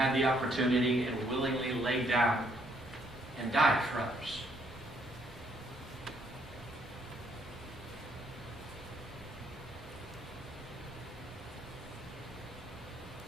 the opportunity and willingly laid down and died for others.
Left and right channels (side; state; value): both; normal; correlation 0.69